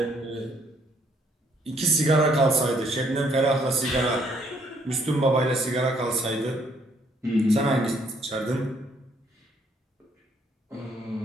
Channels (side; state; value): both; normal; correlation 0.67